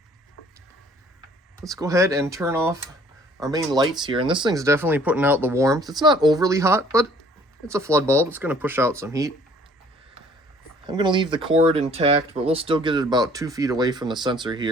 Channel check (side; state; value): both; normal; correlation 0.57